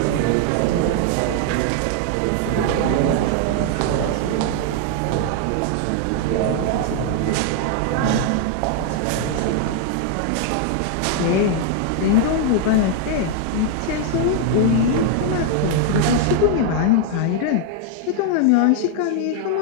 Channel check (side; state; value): both; different; correlation 0.00